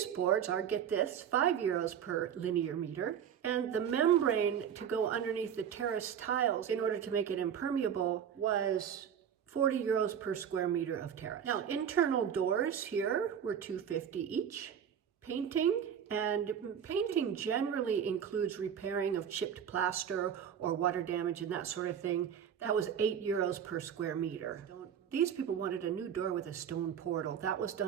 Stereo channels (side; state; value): left; quieter; 8.5 dB